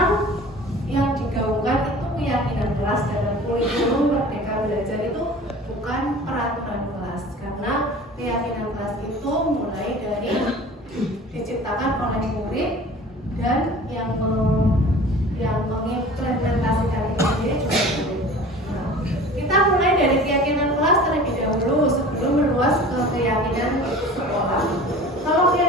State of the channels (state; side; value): normal; both; correlation 0.41